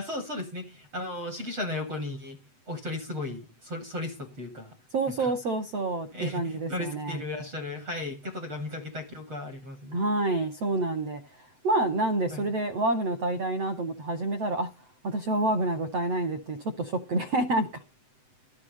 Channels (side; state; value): left; late; 7.9 ms